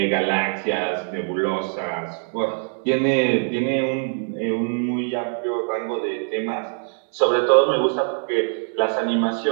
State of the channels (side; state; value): left; silent; 56 dB below the other